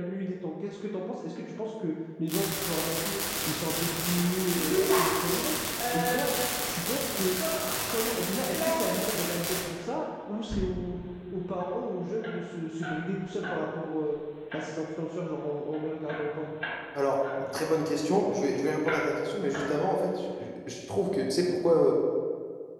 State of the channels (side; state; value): both; identical; correlation 1.00